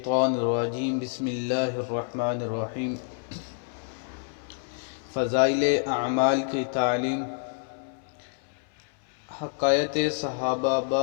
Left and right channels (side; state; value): right; silent; 60 dB below the other